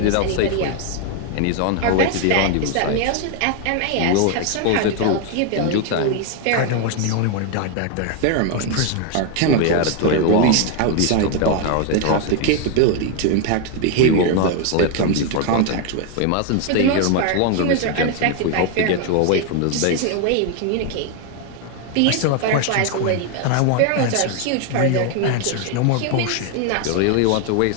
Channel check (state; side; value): different; both; correlation 0.01